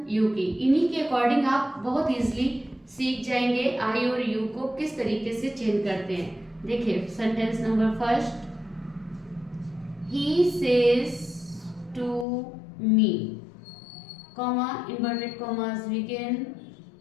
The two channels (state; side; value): drops out; right; at 12.2 s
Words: यू की। इन्हीं के अकॉर्डिंग आप बहुत इजीली सीख जाएंगे आई और यू को किस तरीके से चेंज करते हैं। देखिए sentence number first, he says to me, comma inverted commas begin,